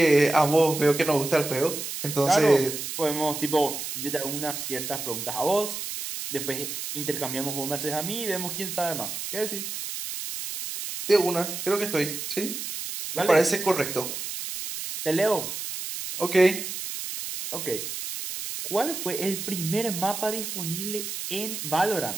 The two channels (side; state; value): right; noise; hiss, 6 dB below the sound